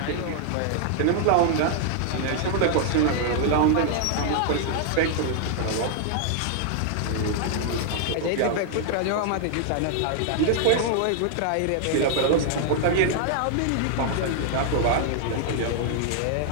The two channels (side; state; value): both; different; correlation 0.00